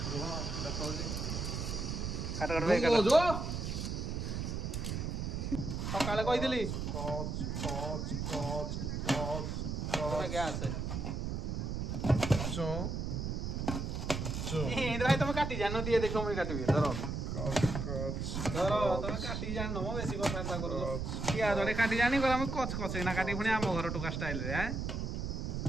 देखो काट काट बे काट सकाळे कहिदिली कच कच कच कच गैस चू चू भाई तुम काटी जानो दिए देखो मैं काटबी धरो कच धरो तुम काटी जानो मो बेसी कथा करू पियाज रे काटी जानी कर हम कच कच ना काटी पुणी आम घर टुका स्टाइल रे हैं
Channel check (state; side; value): noise; right; rumble, 2 dB below the sound